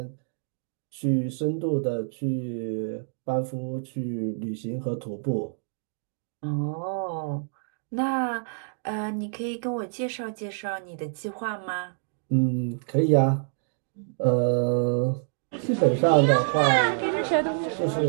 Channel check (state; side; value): silent; left; 60 dB below the other